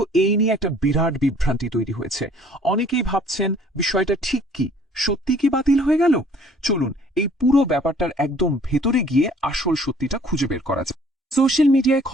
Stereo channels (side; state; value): both; normal; correlation 0.56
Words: এই নিয়ে একটা বিরাট বিভ্রান্তি তৈরি হয়েছে। অনেকেই ভাবছেন বিষয়টা ঠিক কি, সত্যি কি বাতিল হয়ে গেল? চলুন এই পুরো ব্যাপারটার একদম ভেতরে গিয়ে আসল সত্যিটা খুঁজে বের করা যায়। সোশ্যাল মিডিয়ায়